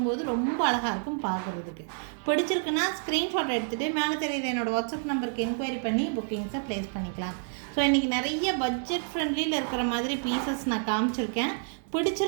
ரொம்ப அழகாக இருக்கும் பார்க்குறதுக்கு. பிடிச்சிருக்குன்னா ஸ்க்ரீன்ஷாட் எடுத்துகிட்டு மேலே தெரியுது என்னோடய வாட்ஸ்அப் நம்பருக்கு என்கொயரி பண்ணி புக்கிங்ஸை ப்ளேஸ் பண்ணிக்கலாம். ஸோ இன்றைக்கி நிறைய பட்ஜெட் ஃப்ரெண்ட்லியில் இருக்கிற மாதிரி பீசஸ் நான் காமிச்சிருக்கேன்.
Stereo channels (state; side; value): silent; left; 59 dB below the other